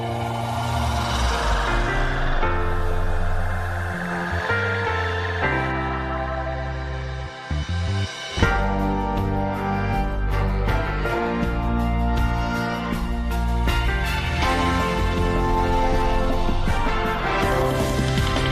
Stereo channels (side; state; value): both; identical; correlation 1.00